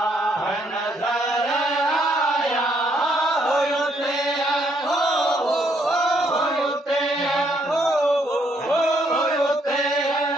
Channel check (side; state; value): both; normal; correlation 0.71